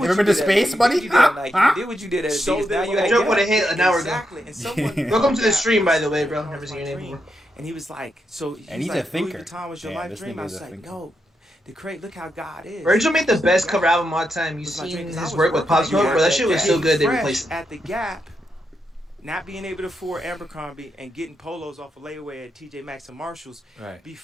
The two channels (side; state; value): both; normal; correlation 0.84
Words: what ever been to space, buddy? You did what you did at So Adidas. Now then you when at I Joke Gap. would have hit an hour ago. Exactly. And someone Welcome to the stream, by the way, bro. Never seen your name before. And he was like, so And he's he's a like, thinker. Louis Vuitton was your Yeah, life this dream. nigga I is was a like, thinker. yo, the crate, look how God is. Virgil made the best cover album of all time. You Was my seen dream, 'cause I his was work with working Pop at Smoke, bro? That shit was so good. They Fresh replaced it. at the Gap, not being able to afford Abercrombie and getting polos off of layaway at TJ Maxx and Marshalls Right.